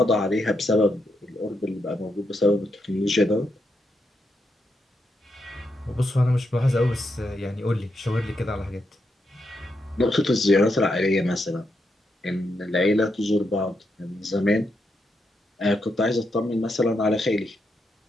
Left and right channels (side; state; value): both; normal; correlation 0.83